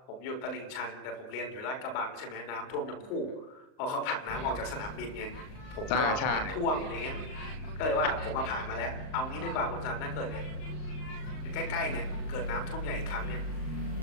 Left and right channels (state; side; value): late; right; 38 ms